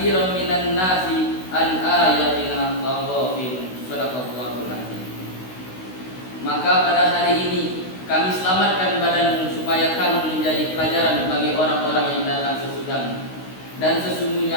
minan nasi an ayatina laghafilun. Shadaqallahul azim. Maka pada hari ini kami selamatkan badanmu supaya kamu menjadi pelajaran bagi orang-orang yang datang sesudahmu. Dan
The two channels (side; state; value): right; late; 16 ms